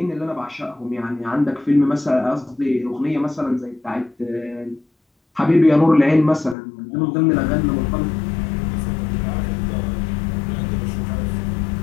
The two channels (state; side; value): drops out; right; at 6.6 s